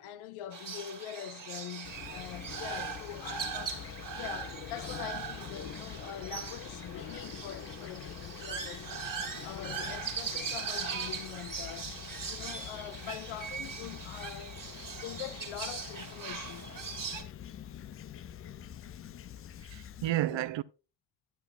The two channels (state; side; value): normal; both; correlation 0.02